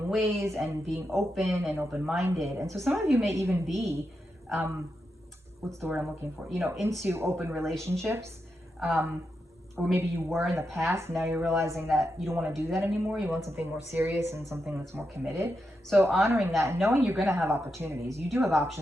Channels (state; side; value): normal; both; correlation 0.86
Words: ways and being open and open-minded. And so some of you may even be, what's the word I'm looking for? Into open relationships. Or maybe you were in the past, now you're realizing that you don't want to do that anymore. You want something more serious and something that's more committed. So honoring that and knowing you're going to have opportunities. You do have